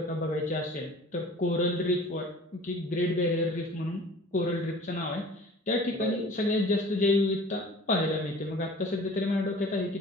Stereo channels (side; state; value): both; normal; correlation 0.46